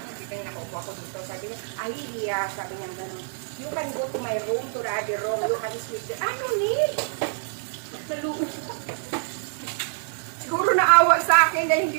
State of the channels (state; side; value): silent; left; 59 dB below the other